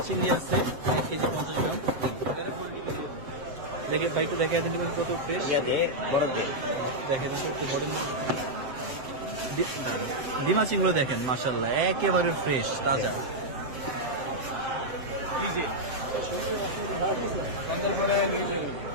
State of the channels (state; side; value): late; left; 7.7 ms